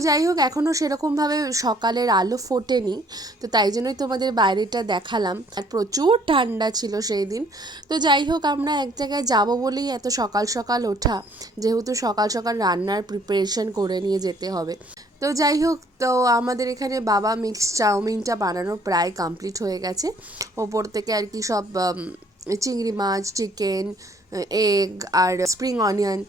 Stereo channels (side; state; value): both; normal; correlation 0.61